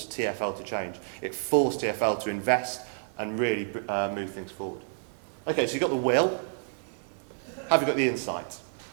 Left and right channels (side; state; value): left; silent; digital silence